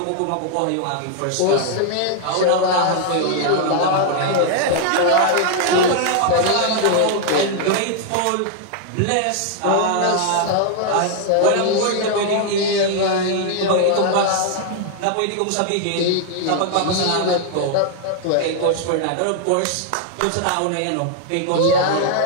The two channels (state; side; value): different; both; correlation 0.00